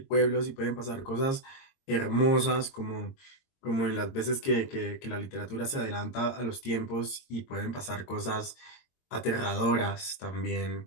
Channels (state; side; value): late; right; 22 ms